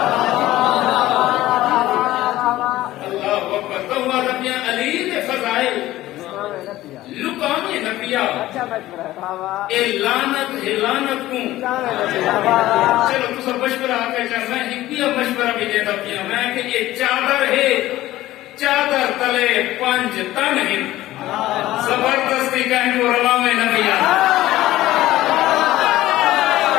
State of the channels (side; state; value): right; quieter; 15.7 dB